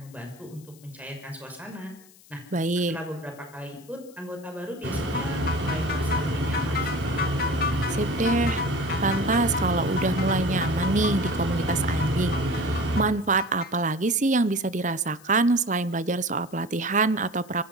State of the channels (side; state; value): left; noise; hiss, 25 dB below the sound